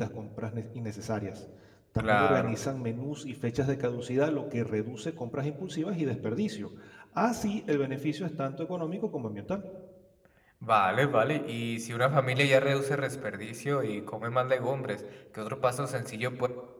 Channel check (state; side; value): identical; both; correlation 1.00